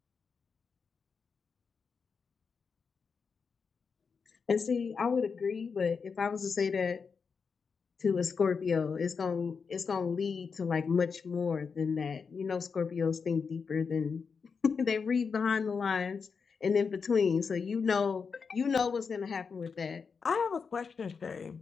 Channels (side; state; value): right; quieter; 5.5 dB